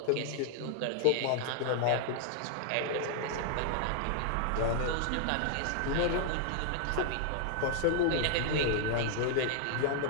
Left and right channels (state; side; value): different; both; correlation 0.00